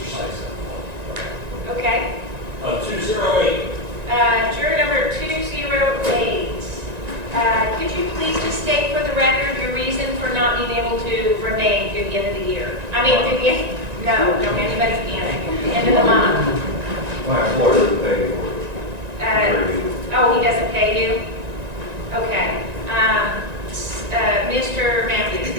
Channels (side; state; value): left; late; 1.9 ms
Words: Sykes. Okay. 208. Juror number 208. Could you please just state for the record your reason for not being able to remain through the end of the year? I mean, through the end, no, anybody can. The end of the month. My employer doesn't pay me for it. Oh, he doesn't pay you? Okay. Mr.